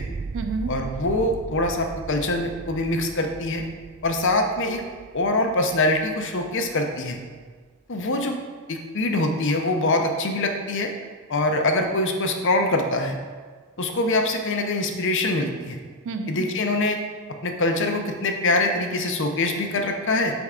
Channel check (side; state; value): both; normal; correlation 0.00